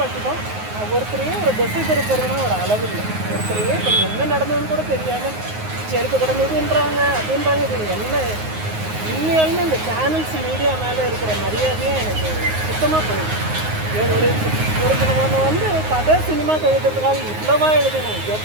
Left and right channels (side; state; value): left; late; 9.5 ms